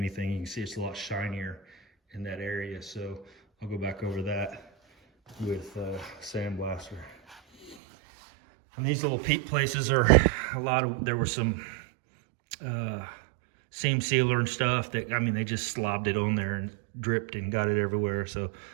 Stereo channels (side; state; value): left; drops out; at 7.8 s